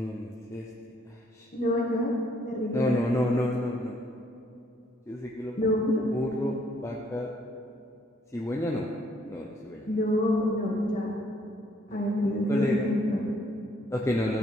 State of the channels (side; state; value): both; normal; correlation 0.67